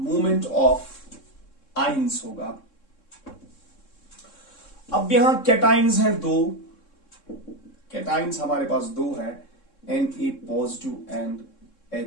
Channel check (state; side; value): late; right; 3.7 ms